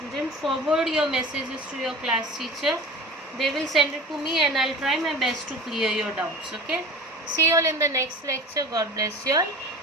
forward your messages to your class teacher. They will send it to me and I'll try my best to clear your doubts. Okay. See you all in the next lecture. God bless you all.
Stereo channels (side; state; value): both; normal; correlation 0.36